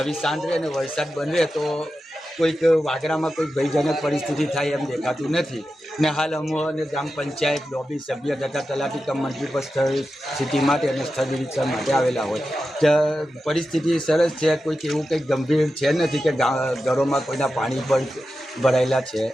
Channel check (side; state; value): both; normal; correlation 0.91